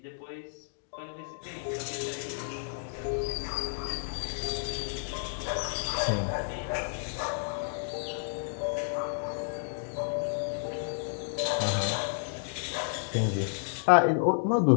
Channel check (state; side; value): silent; right; digital silence